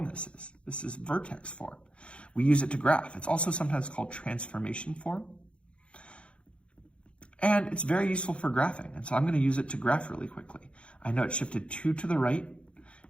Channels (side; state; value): right; late; 0.059 ms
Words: this is. This is vertex form. We use it to graph. It's also sometimes called transformation form. And it's very useful for graphing. And so I'm going to use it to graph really quickly. I know it shifted 2 to the right